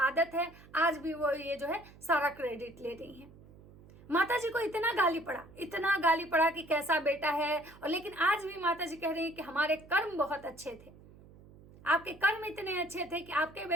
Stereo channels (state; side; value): noise; right; hum, 22 dB below the sound